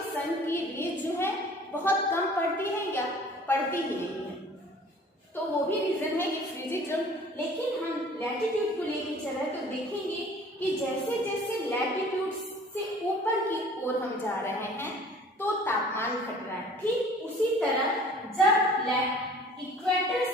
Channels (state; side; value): normal; both; correlation 0.50